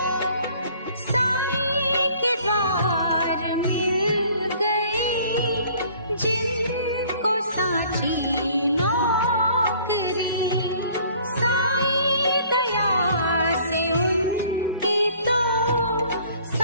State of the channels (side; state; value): both; inverted; correlation -0.55